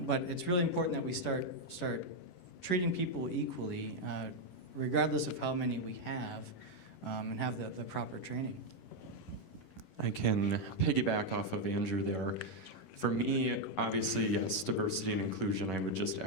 it's really important that we start treating people equally, regardless of how many we have, and have the proper training. I can piggyback off of Andrew there. For me, obviously, yes, diversity and inclusion, I would just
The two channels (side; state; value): right; late; 11 ms